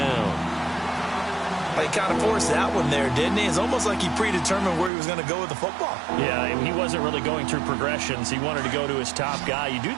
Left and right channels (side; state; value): left; drops out; at 4.9 s